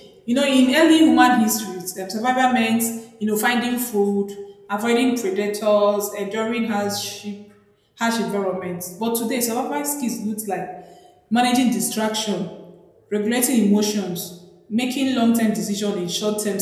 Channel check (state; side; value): identical; both; correlation 1.00